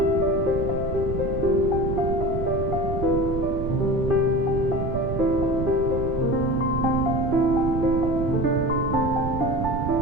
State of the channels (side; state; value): right; noise; rumble, 4 dB below the sound